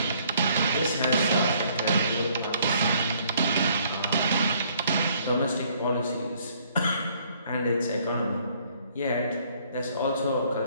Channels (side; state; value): both; inverted; correlation -0.63